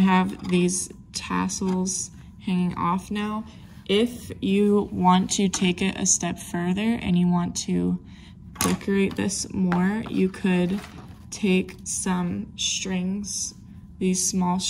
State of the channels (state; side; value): identical; both; correlation 1.00